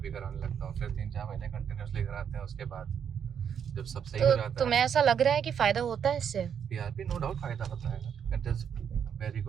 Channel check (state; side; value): quieter; left; 8.0 dB